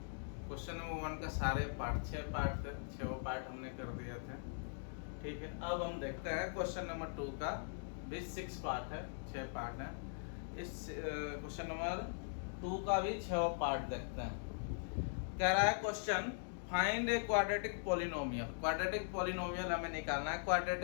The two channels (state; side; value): silent; right; digital silence